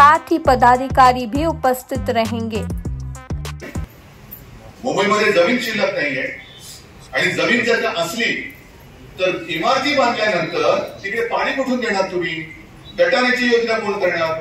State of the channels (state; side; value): identical; both; correlation 1.00